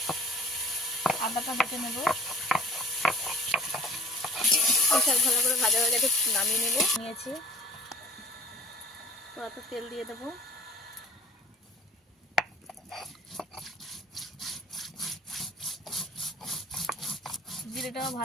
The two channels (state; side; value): normal; both; correlation 0.48